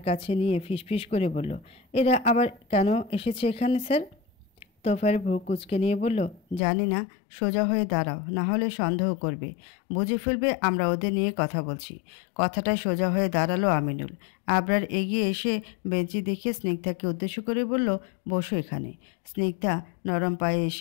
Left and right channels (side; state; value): right; drops out; at 6.6 s